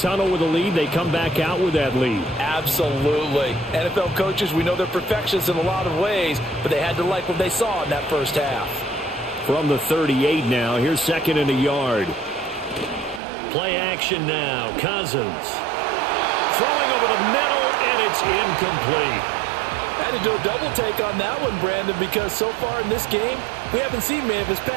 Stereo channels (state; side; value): drops out; left; at 13.2 s